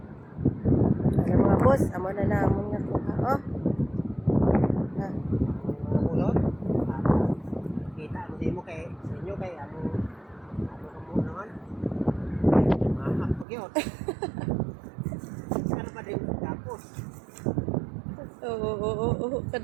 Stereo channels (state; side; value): drops out; left; at 13.5 s